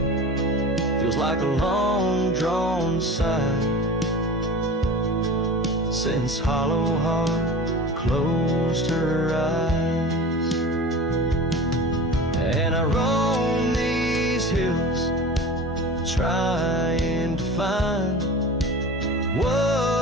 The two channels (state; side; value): normal; both; correlation 0.36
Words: feels like a long-drawn sigh, since hollow heart closed her eyes. trying to find